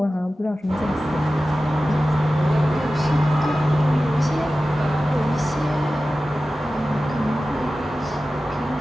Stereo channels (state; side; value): normal; both; correlation 0.95